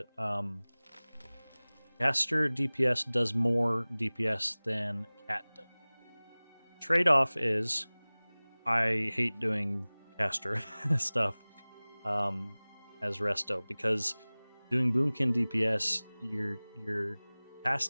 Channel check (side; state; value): both; inverted; correlation -1.00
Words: Caster DPS does more DPS than Cat does. Trade-off is I hate doing caster stuff as Resto because doing Boomkin DPS, your